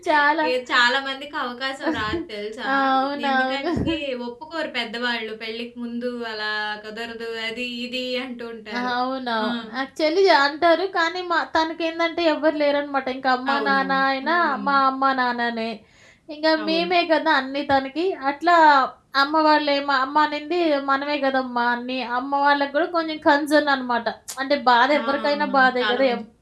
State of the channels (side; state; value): both; identical; correlation 1.00